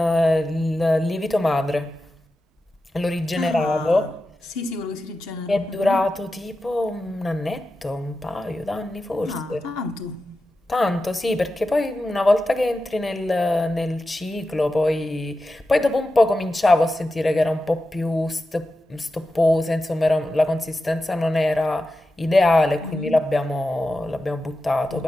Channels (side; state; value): both; normal; correlation 0.92